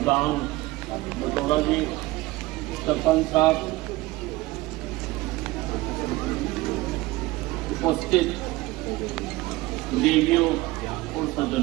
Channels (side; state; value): left; quieter; 19.6 dB